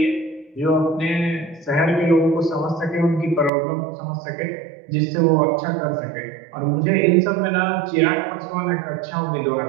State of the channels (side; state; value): left; drops out; at 3.5 s